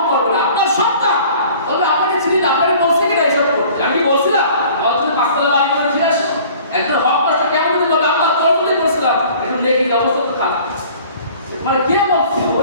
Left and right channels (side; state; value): both; inverted; correlation -0.49